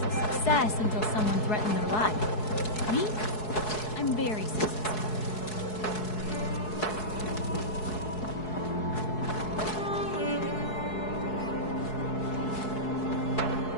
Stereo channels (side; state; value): right; late; 4.7 ms